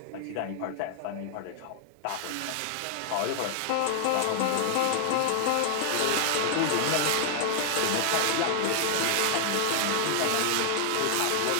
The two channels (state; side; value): different; both; correlation 0.00